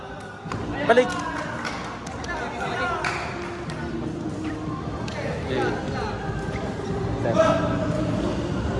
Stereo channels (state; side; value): identical; both; correlation 1.00